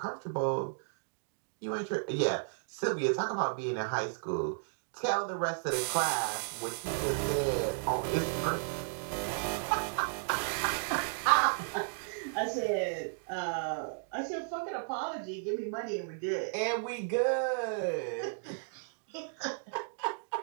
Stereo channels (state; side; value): silent; left; digital silence